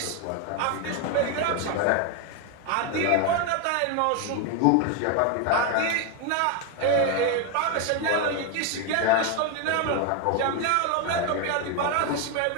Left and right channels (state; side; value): different; both; correlation 0.02